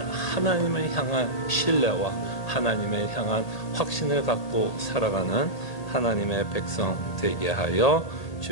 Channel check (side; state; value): right; late; 1.8 ms